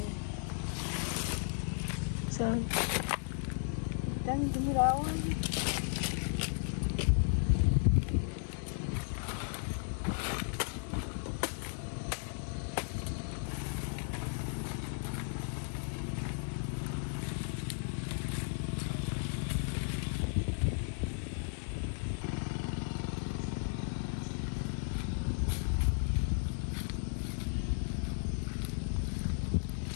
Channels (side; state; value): right; silent; 54 dB below the other